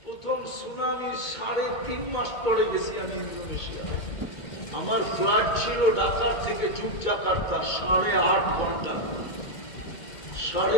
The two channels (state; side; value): late; right; 2.2 ms